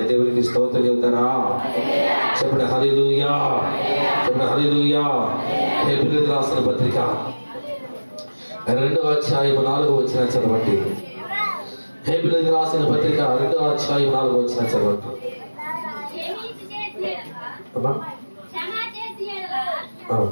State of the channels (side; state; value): both; inverted; correlation -1.00